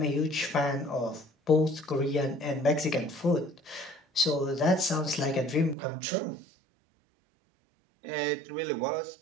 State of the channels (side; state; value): left; drops out; at 5.8 s